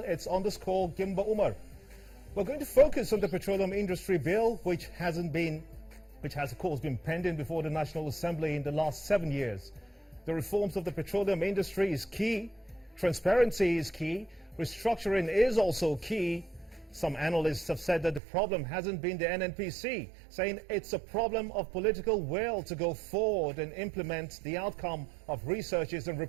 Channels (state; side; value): drops out; left; at 18.2 s